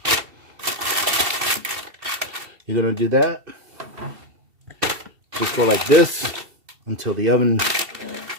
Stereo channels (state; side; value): late; left; 2.7 ms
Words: You're going to do that. Just go like this until the oven